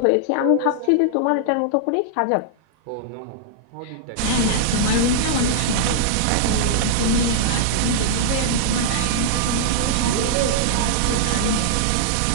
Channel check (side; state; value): both; different; correlation -0.01